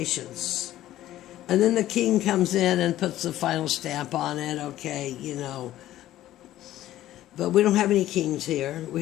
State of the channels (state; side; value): quieter; right; 13.9 dB